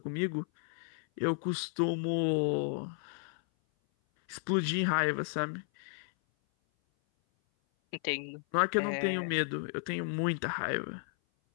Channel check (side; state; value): right; silent; 56 dB below the other